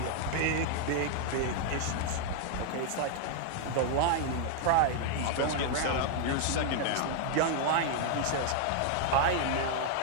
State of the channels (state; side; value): different; both; correlation 0.00